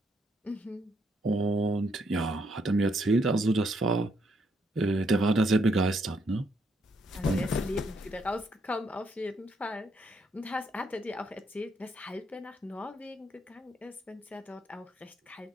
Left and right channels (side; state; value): both; normal; correlation 0.74